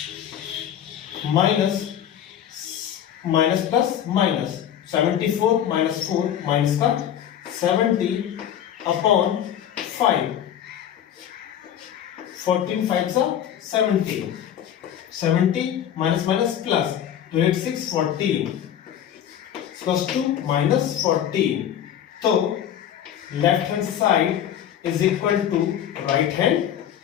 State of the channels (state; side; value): quieter; right; 10.1 dB